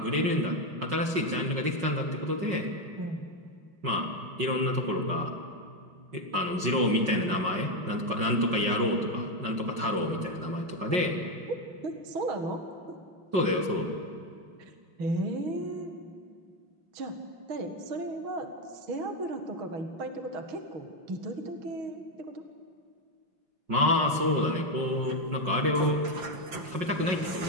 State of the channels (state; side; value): late; left; 5.5 ms